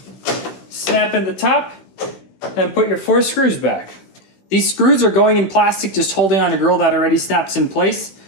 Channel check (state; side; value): late; right; 16 ms